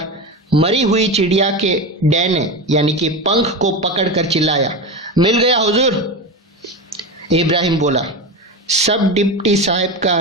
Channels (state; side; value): normal; both; correlation 0.21